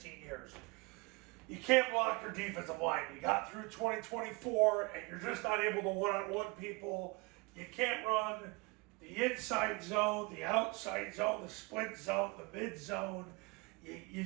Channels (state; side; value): quieter; left; 27.3 dB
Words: years. You can't block your defensive line. You got through 2024 and you're just not able to one-on-one people. You can't run the inside zone, the outside zone, the split zone, the mid zone. You